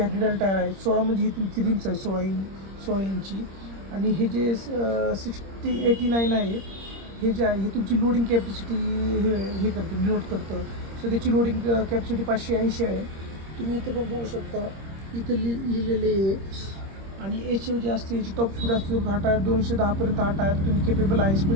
हॅड्रिडल टायर आहे. 16 म्हणजे ही तुमची रिम्स आहे 16 इंची. आणि हे जे 89 आहे हे जे आहे हे तुमची लोडिंग कॅपॅसिटी हे करतं, डिनोट करतं. सो त्याची लोडिंग कॅपॅसिटी 580 आहे. तुम्ही इथं पण बघू शकता, इथं लिहिलेले आहे. आणि एच जे असते याची टॉप स्पीड असते हा टायर 210पर्यंत हा टायर तुम्ही केपेबल आहे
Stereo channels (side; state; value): left; late; 26 ms